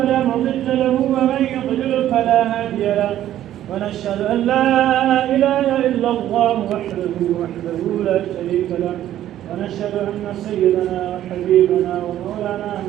مضل له ومن يضلل فلا هادي له. ونشهد أن لا إله إلا الله وحده لا شريك له. ونشهد أن سيدنا وحبيبنا ومولانا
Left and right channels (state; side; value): quieter; left; 12.3 dB